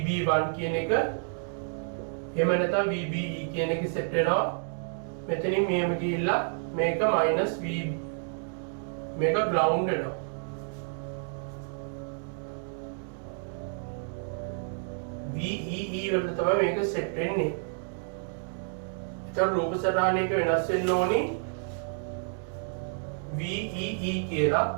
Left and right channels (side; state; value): left; silent; 57 dB below the other